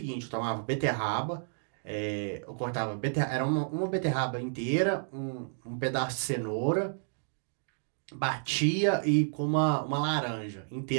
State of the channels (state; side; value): silent; left; digital silence